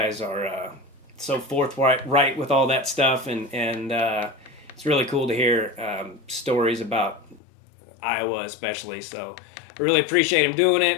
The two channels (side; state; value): right; drops out; at 7.4 s